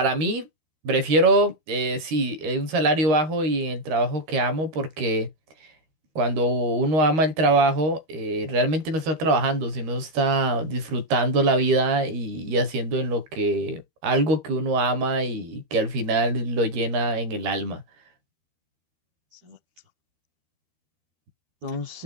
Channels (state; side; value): late; left; 13 ms